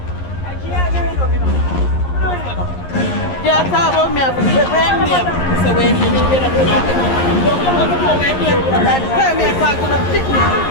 Yeah, talk about me.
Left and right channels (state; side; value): late; right; 11 ms